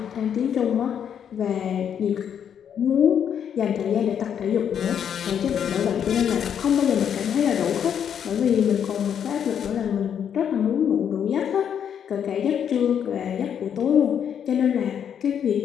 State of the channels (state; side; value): quieter; right; 8.5 dB